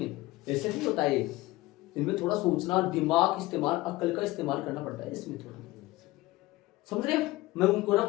ऐसे नहीं होता है, इनमें थोड़ा सोचना, दिमाग इस्तेमाल, अक्ल का इस्तेमाल करना पड़ता है इसमें थोड़ा, समझ रहे हो। मैं उनको रब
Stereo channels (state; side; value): quieter; right; 19.0 dB